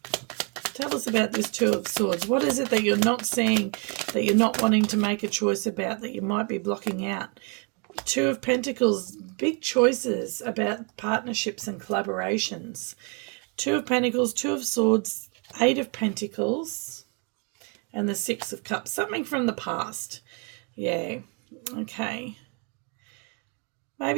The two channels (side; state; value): left; quieter; 36.0 dB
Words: Tell us about this Two of Swords. What is it that you're not seeing, that you're not wanting to make a choice about, that you might be blocking out? Two of Pentacles, big choices about partnerships and collaborations. Two of Pentacles, Two of Swords, Eight of Pentacles, and the Six of Cups. Something from the past. Yeah, okay.